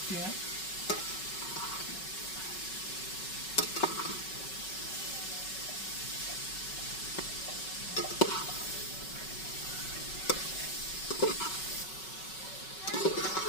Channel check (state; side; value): late; right; 5.3 ms